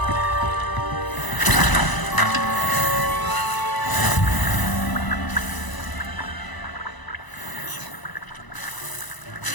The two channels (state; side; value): late; right; 1.0 ms